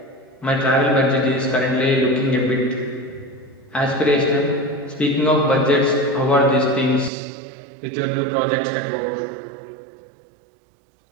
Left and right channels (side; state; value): left; drops out; at 7.1 s